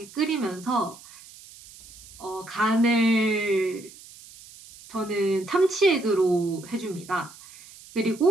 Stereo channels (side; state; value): right; noise; hiss, 20 dB below the sound